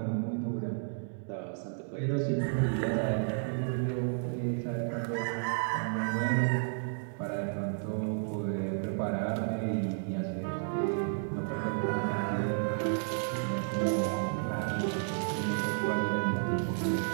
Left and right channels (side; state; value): left; silent; 56 dB below the other